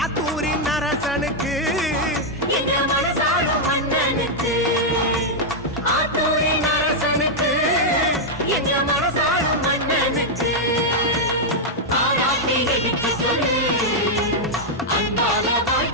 அரசனுக்கு எங்க மனசாளும் மன்னனுக்கு ஆத்தூரின் அரசனுக்கு எங்க மனசாளும் மன்னனுக்கு ஆராத்தி எடுக்க சொல்லு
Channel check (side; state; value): both; normal; correlation -0.03